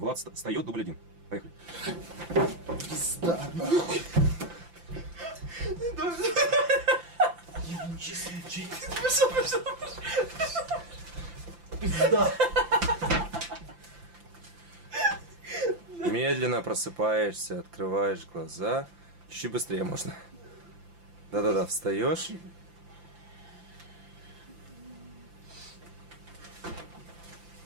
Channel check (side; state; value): left; late; 5.8 ms